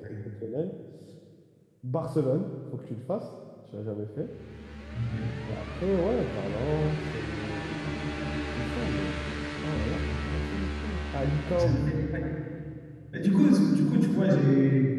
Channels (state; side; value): identical; both; correlation 1.00